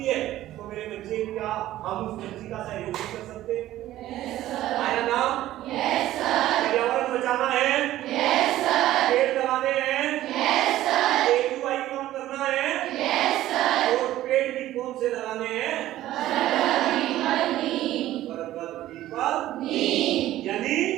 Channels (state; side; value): quieter; left; 14.3 dB